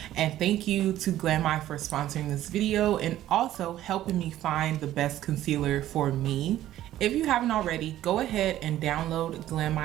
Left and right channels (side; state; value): left; quieter; 13.3 dB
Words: and thank you to Glamai for sponsoring this video and also helping me find the best concealer for me. If you haven't already, go ahead and download